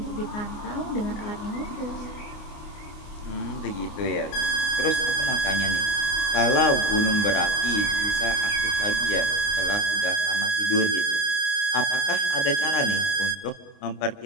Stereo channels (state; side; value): late; right; 29 ms